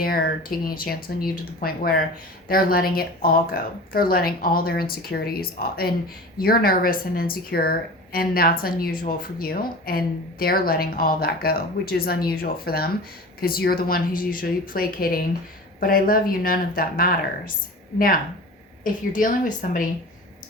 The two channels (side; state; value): both; normal; correlation 0.35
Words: taking a chance on you to the point where they're letting it all go. They're letting all their insecurities, and you're nervous and insecure And that's unusual for you. And they're letting all that go, which is unusual for them because you're the one who's usually placating. But I love you. None of that matters. Now, if you're dealing with somebody,